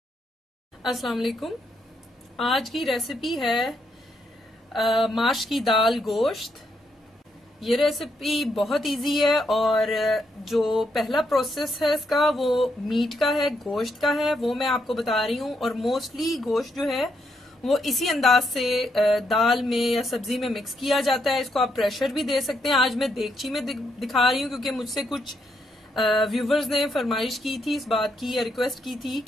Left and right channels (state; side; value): normal; both; correlation 0.78